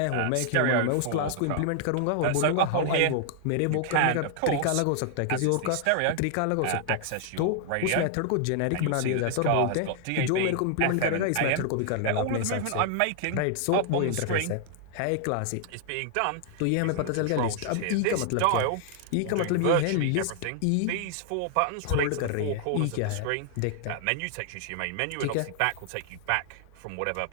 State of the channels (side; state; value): both; different; correlation 0.00